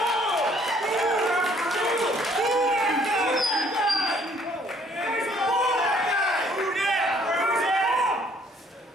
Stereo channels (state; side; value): normal; both; correlation 0.62